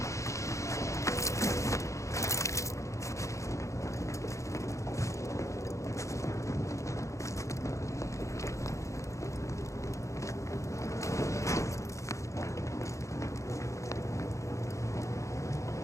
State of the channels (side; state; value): right; late; 0.15 ms